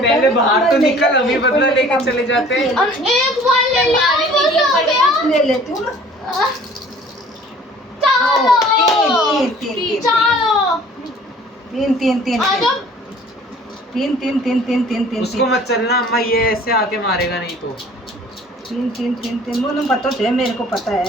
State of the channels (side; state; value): both; normal; correlation 0.51